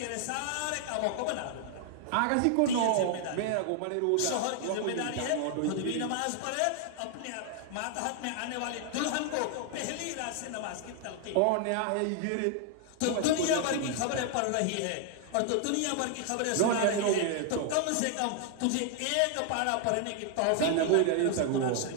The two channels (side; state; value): both; different; correlation 0.00